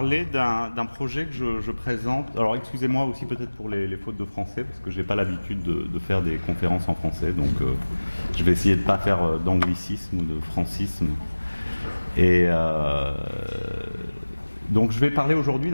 d'un projet que je présente. Alors excusez-moi aussi peut-être pour les fautes de français, parce que je n'ai pas l'habitude de faire des conférences en français, donc je vais essayer de ne pas faire d'anglicisme ou de francisme. Et donc je vais parler aujourd'hui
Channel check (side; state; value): both; inverted; correlation -1.00